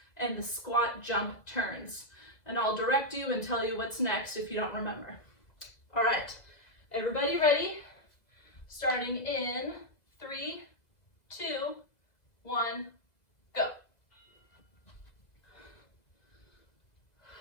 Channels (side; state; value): right; late; 2.0 ms